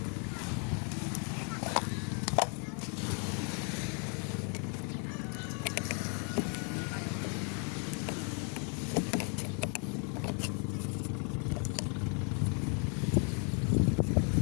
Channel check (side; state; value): right; quieter; 38.7 dB